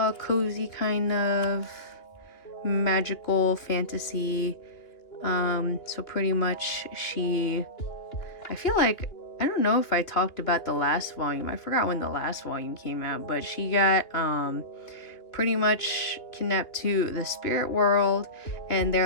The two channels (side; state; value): right; late; 2.6 ms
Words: cozy kind of magical fantasy. So pretty much I feel like, I don't know if I talked about the last volume. I forgot when the last volume came out, but she got pretty much kidnapped to the spirit world, and